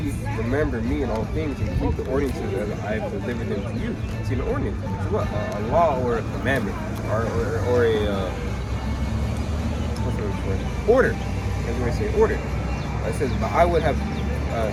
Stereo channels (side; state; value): both; identical; correlation 1.00